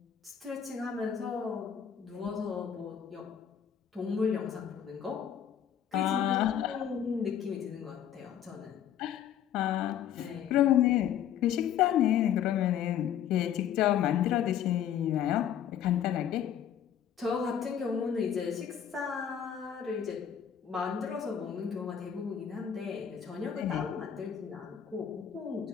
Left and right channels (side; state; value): right; quieter; 9.2 dB